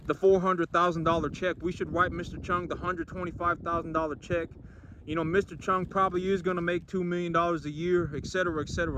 the $400,000 check. We should write Mr. Chung the $125,000 check. You know, Mr. Chung probably is going to make $2 million a year, etc.,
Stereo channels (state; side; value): identical; both; correlation 1.00